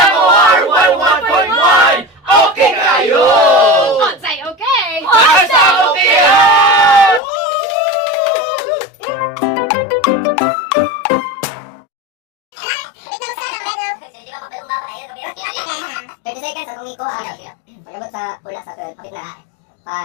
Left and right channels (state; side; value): drops out; right; at 7.2 s